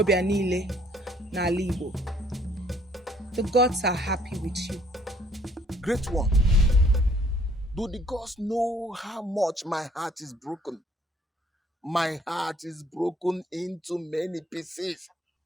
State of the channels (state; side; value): normal; both; correlation 0.62